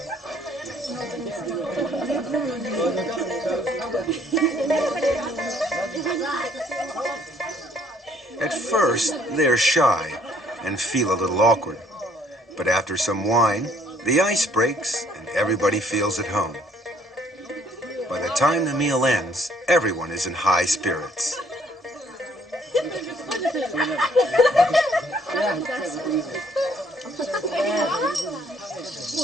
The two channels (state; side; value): normal; both; correlation 0.63